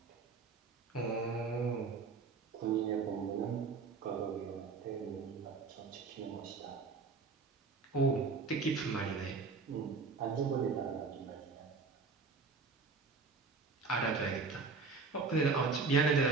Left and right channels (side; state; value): left; quieter; 4.6 dB